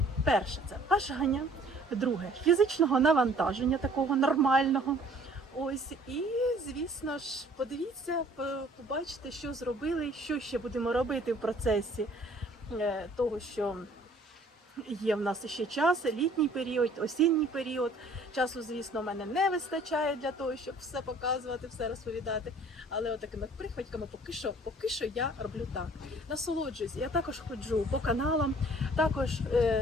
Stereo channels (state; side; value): normal; both; correlation 0.55